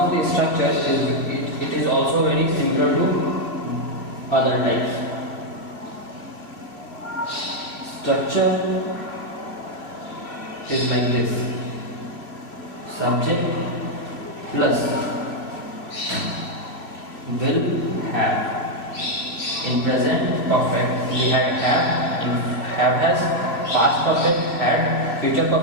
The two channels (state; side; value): late; right; 2.5 ms